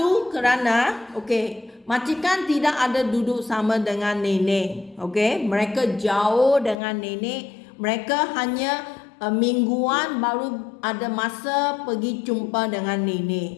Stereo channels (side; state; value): right; drops out; at 6.8 s